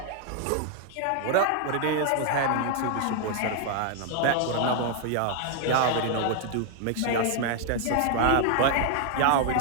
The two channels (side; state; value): both; different; correlation 0.00